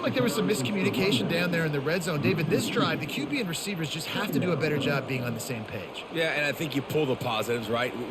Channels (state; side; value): identical; both; correlation 1.00